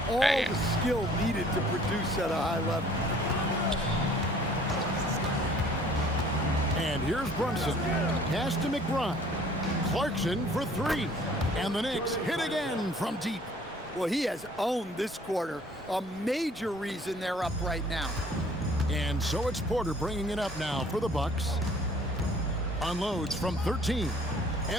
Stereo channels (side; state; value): both; normal; correlation 0.55